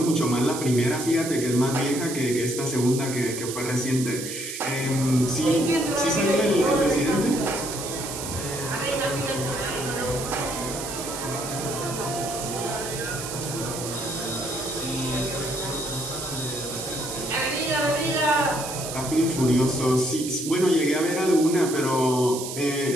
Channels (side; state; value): right; noise; hiss, 7 dB below the sound